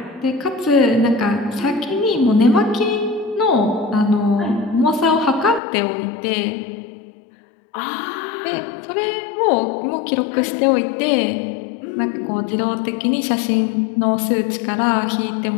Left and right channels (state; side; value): drops out; right; at 5.6 s